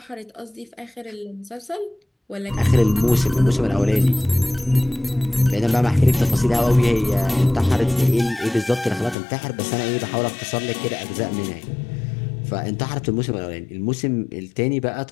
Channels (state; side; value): drops out; right; at 9.2 s